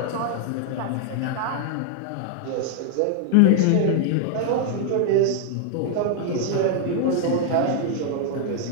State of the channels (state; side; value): different; both; correlation 0.00